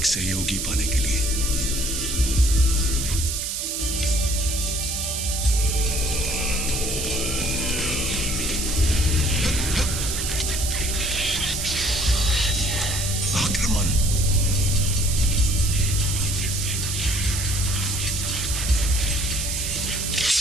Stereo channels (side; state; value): right; noise; hiss, 2 dB below the sound